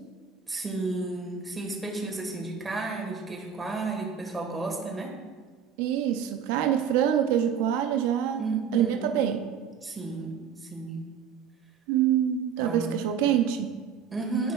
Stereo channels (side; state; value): left; quieter; 7.4 dB